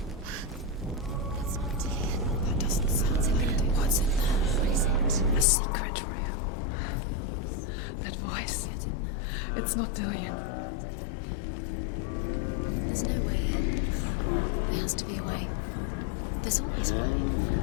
It's not Dillian. That doesn't sound like Dillian. What's in there? What is it? A secret room. That voice. It's not Dillian. There's no way. Find a way. There has to be a way. Find a way. There's always a way. Don't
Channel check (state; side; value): drops out; right; at 5.5 s